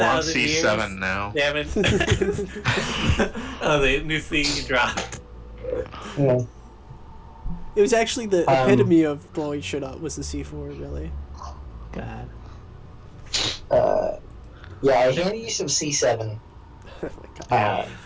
years. C7 now. They haven't. Oh, the new C dropped. Yeah. It was actually the Um, epitome of blowing shit up was the C4, really. God. Yeah, I handed you some C7. Oh my god.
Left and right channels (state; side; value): identical; both; correlation 1.00